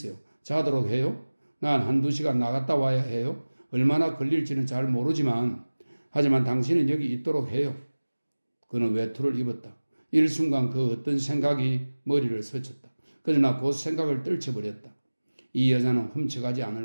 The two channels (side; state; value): both; inverted; correlation -1.00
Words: 자도록 해요? 난 한두 시간 나갔다 와야 해요. 얼마나 걸릴지는 잘 모르지만 하지만 당신은 여기 있도록 해요. 그는 외투를 입었다. 일순간 그 어떤 생각이 머리를 스쳤다. 그러나 곧 생각을 떨쳐버렸다. 이 여자는 훔쳐가지